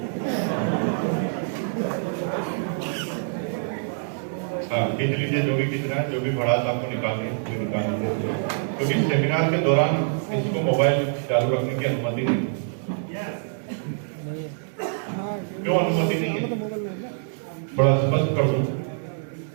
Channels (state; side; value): silent; left; digital silence